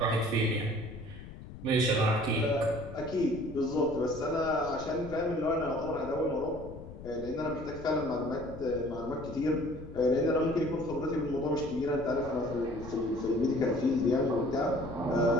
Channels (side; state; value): left; noise; rumble, 14 dB below the sound